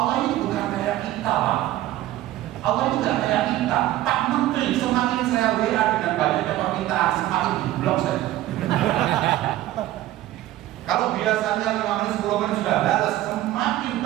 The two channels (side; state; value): left; quieter; 14.8 dB